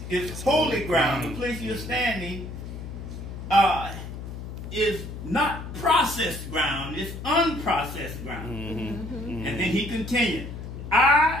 is holy ground. The place you're standing is not processed ground, it's unprocessed ground. And then he continued,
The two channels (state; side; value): noise; left; hum, 9 dB below the sound